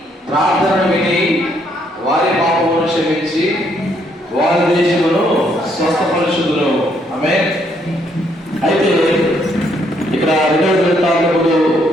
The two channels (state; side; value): normal; both; correlation 0.71